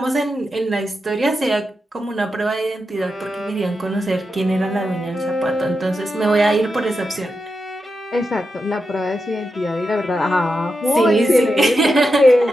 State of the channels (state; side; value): normal; both; correlation 0.88